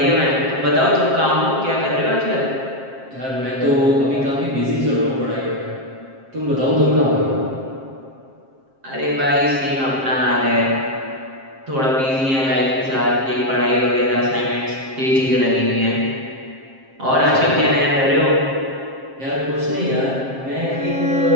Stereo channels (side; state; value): left; late; 7.5 ms